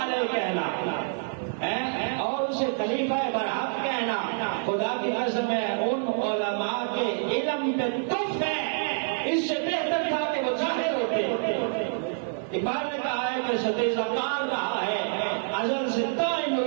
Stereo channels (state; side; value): silent; left; 56 dB below the other